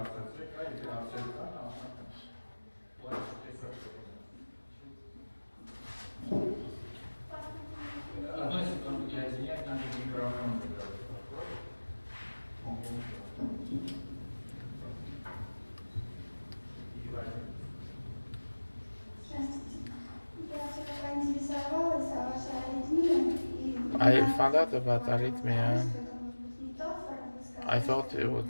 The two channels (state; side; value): inverted; both; correlation -1.00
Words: I found out about arrhythmia. I thought it